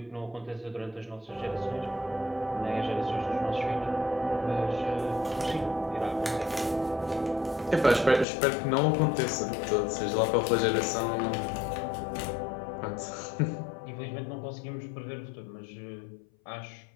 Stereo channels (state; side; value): drops out; right; at 8.2 s